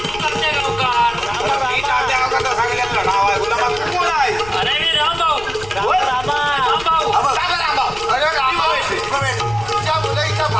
मी तात्या गावचा सांगितलेलं नाव आहे. गुलाबा तू कोण आहे. तुझ्या मुलं इथं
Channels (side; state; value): left; noise; rumble, 16 dB below the sound